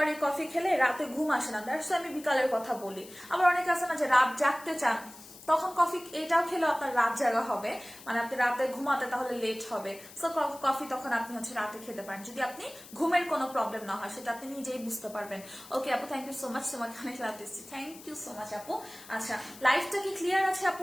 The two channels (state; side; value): noise; left; hiss, 18 dB below the sound